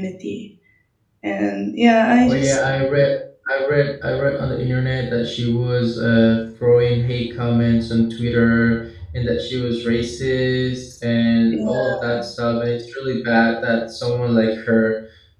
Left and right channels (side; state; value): both; identical; correlation 1.00